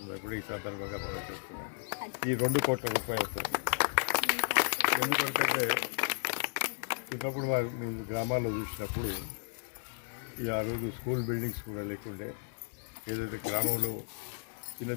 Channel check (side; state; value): right; silent; digital silence